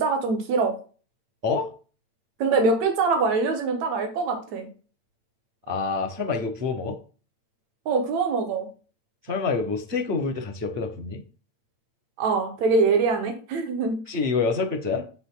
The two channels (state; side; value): late; left; 8.8 ms